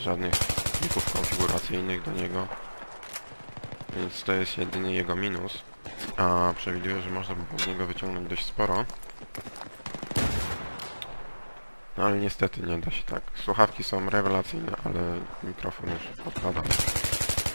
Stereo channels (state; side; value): inverted; both; correlation -1.00